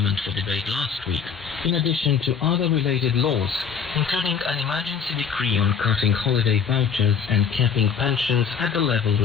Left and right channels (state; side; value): quieter; right; 6.7 dB